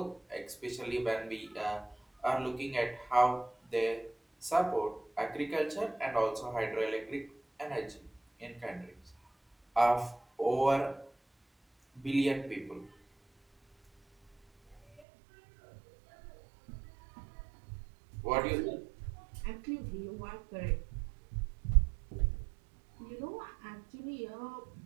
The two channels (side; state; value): left; drops out; at 15.0 s